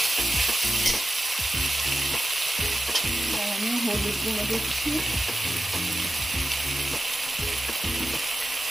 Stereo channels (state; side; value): normal; both; correlation 0.93